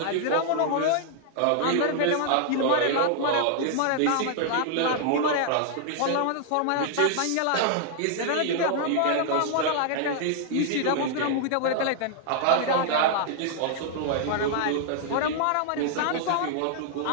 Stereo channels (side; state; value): both; different; correlation -0.01